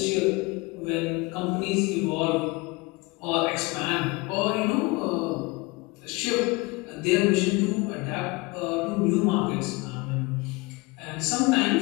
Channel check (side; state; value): right; quieter; 25.1 dB